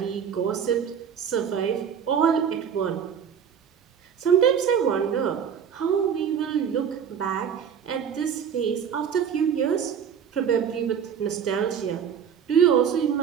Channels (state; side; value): quieter; left; 7.8 dB